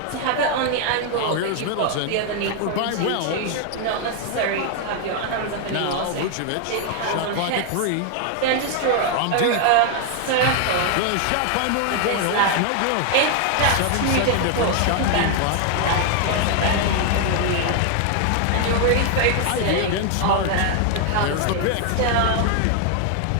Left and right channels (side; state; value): both; different; correlation 0.00